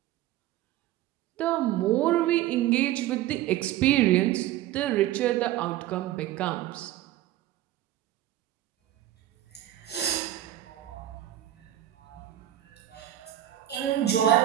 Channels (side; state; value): left; quieter; 13.5 dB